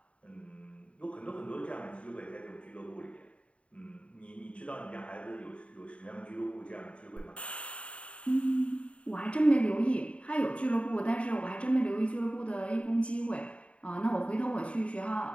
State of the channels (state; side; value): late; right; 0.062 ms